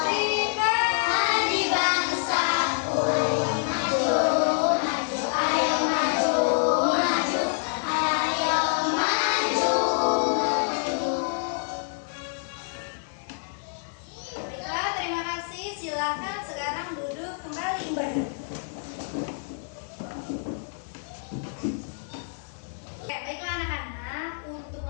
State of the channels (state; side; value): silent; right; digital silence